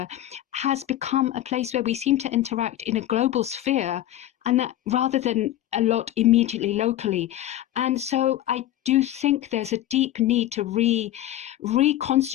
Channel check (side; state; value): right; quieter; 13.3 dB